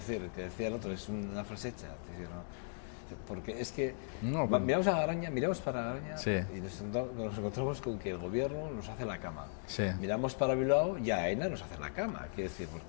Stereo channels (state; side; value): silent; right; digital silence